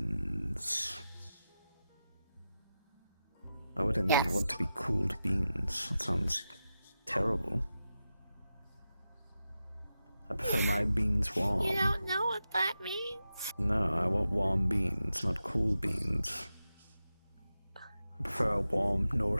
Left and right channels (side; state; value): both; inverted; correlation -0.91